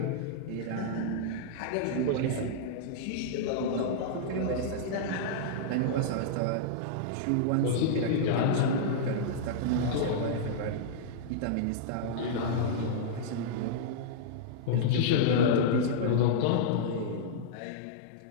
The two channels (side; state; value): both; different; correlation -0.02